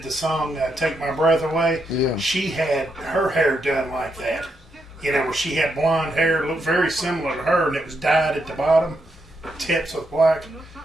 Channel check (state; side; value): normal; both; correlation 0.80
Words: the song Take My Breath Away. Yeah. She had her hair done like that. Where she had blonde hair, looked very similar to her, and it was dyed at the bottom, tips with black.